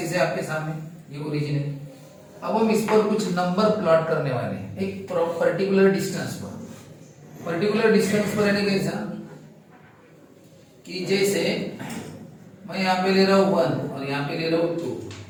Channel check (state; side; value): identical; both; correlation 1.00